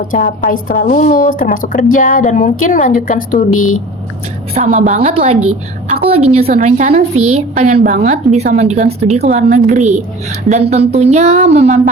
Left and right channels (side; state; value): both; normal; correlation 0.42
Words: capai setelah lulus, termasuk kerja dan mungkin melanjutkan studi. Sama banget lagi. Aku lagi nyusun rencana sih, pengen banget bisa melanjutkan studi ke luar negeri. Dan tentunya